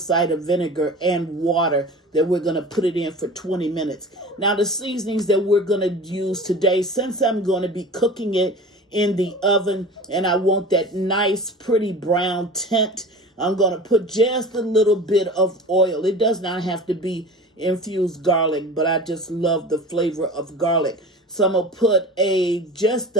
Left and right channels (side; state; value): both; normal; correlation 0.36